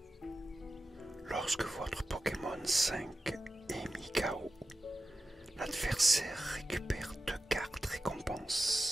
Lorsque votre Pokémon 5 est mis KO, l'adversaire récupère 2 cartes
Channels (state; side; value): normal; both; correlation 0.93